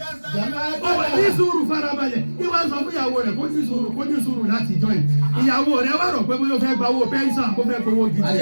Ó wà ní sùúrù farabalẹ̀. Ìwà sọ fún ìyàwó rẹ̀ kó ní sùúrù láti jọ ẹ̀. Ìyàwó rẹ̀ wà rọ̀ pé bóyá ó fẹ́ gba owó pẹ́ńsàn kó fẹ́ gbowó gidi.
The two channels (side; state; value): both; inverted; correlation -1.00